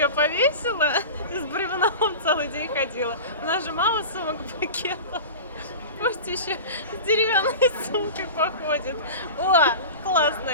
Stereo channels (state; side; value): inverted; both; correlation -0.32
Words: повесила и с бревном целый день ходила. У нас же мало сумок-пакетов. Пусть еще с деревянной сумкой походит. О,